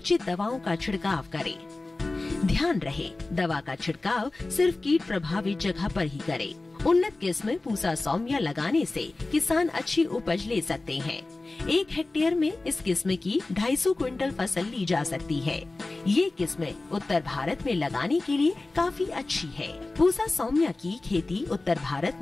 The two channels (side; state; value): right; quieter; 3.2 dB